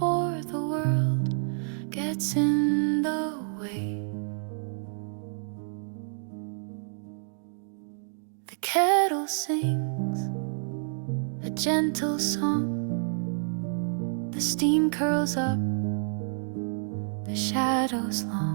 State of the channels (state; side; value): silent; left; digital silence